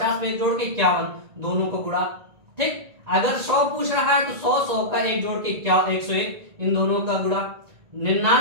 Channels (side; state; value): left; late; 1.9 ms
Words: में एक जोड़ के 51, दोनों को गुणा। ठीक, अगर 100 पूछ रहा है तो 100 100 का एक जोड़ के 101, इन दोनों का गुणा।